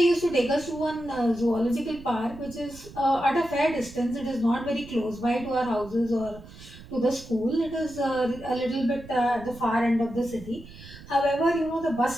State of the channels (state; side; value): noise; right; rumble, 17 dB below the sound